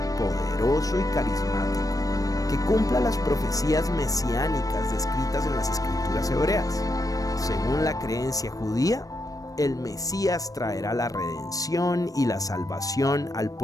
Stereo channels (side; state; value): right; late; 0.17 ms